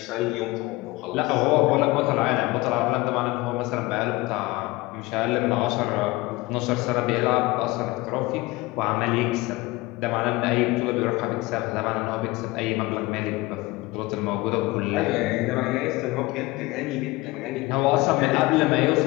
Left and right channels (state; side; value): quieter; right; 21.1 dB